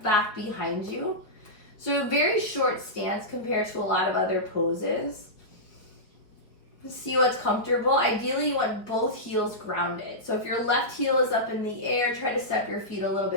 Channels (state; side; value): late; right; 4.6 ms